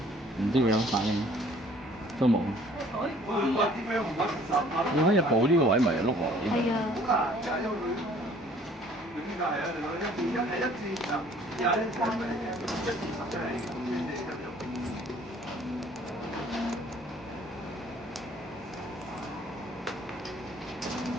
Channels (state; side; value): normal; both; correlation 0.56